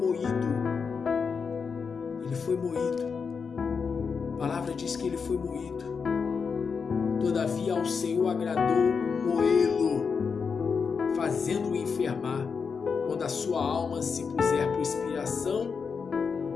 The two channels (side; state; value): right; quieter; 5.6 dB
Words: a palavra diz que ele foi moído, todavia ao Senhor agradou moê-lo, fazendo-o enfermar, quando a sua alma se puser por expiação